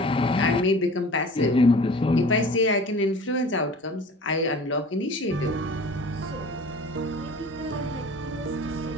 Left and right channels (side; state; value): both; normal; correlation 0.42